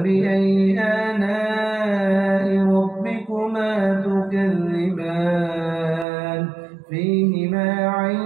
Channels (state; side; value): drops out; left; at 6.1 s